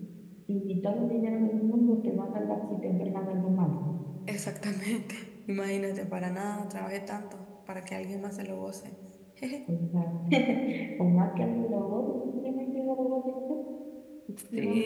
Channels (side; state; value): both; identical; correlation 1.00